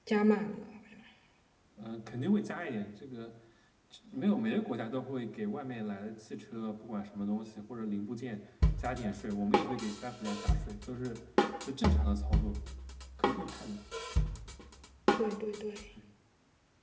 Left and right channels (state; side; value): identical; both; correlation 1.00